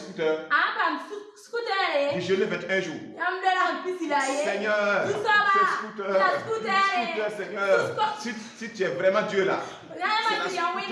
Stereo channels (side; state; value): both; identical; correlation 1.00